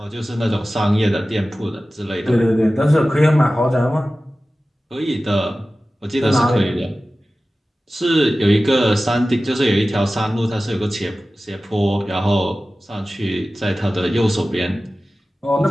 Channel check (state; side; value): normal; both; correlation 0.96